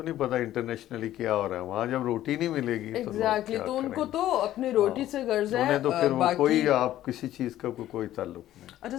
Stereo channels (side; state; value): right; quieter; 13.4 dB